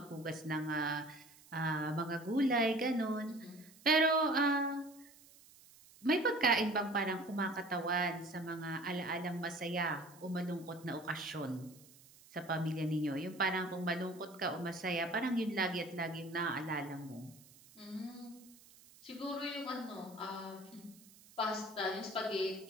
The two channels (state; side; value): noise; right; hiss, 24 dB below the sound